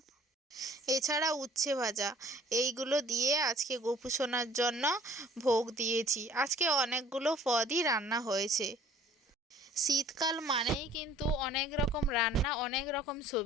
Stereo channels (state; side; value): normal; both; correlation 0.53